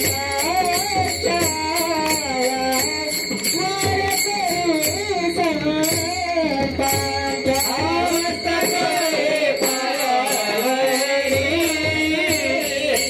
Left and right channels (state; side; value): identical; both; correlation 1.00